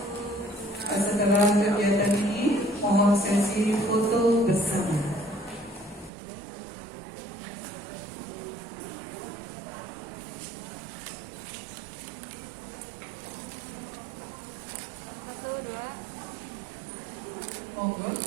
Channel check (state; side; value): drops out; left; at 6.1 s